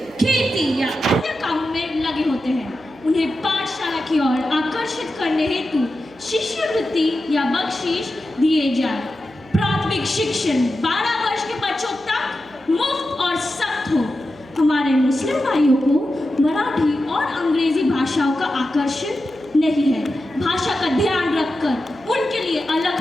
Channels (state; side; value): noise; right; hum, 26 dB below the sound